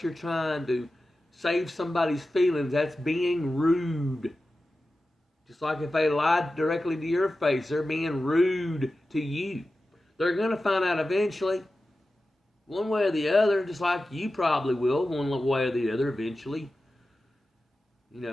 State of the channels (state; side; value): normal; both; correlation 0.94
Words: you're trying to save somebody's feelings, that's being rude. Just like if they lied directly to your face, they're being rude to you. They're going to find out eventually. One way or the other, just like you probably will, one way or the other eventually.